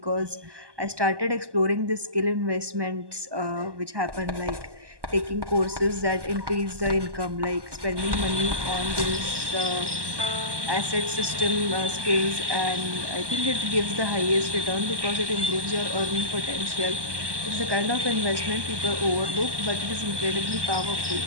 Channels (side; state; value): left; late; 1.2 ms